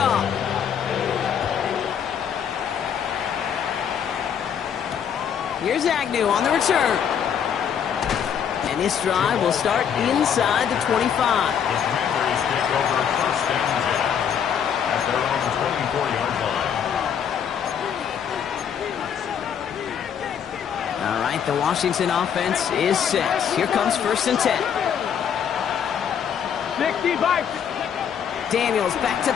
Here's Agnew on the return. And this drive will start inside the 25. The Commanders take over 1st and 10 at their own 24-yard line. All right, the Washington offense is set. Here comes 1st and 10. 65. Daniels back to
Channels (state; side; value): quieter; right; 8.1 dB